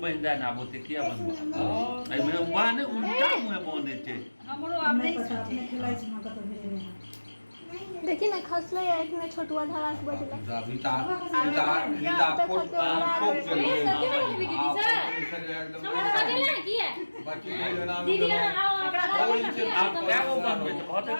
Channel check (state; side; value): inverted; both; correlation -1.00